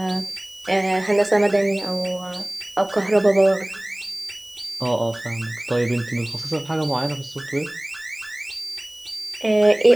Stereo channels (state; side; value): noise; right; hiss, 25 dB below the sound